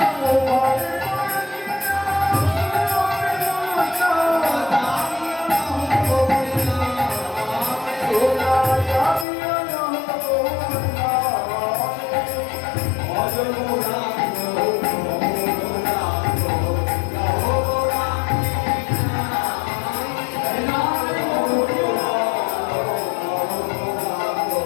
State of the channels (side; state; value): right; drops out; at 9.2 s